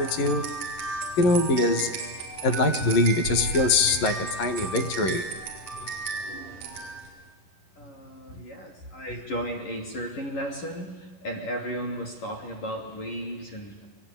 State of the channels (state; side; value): late; right; 11 ms